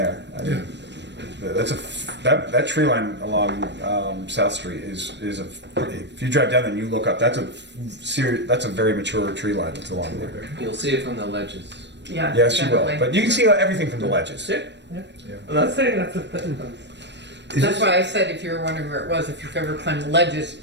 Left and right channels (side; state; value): left; late; 0.51 ms